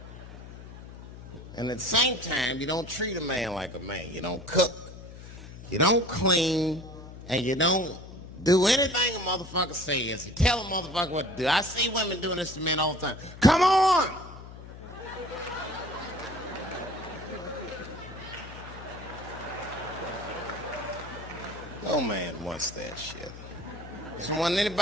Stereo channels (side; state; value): left; noise; hum, 14 dB below the sound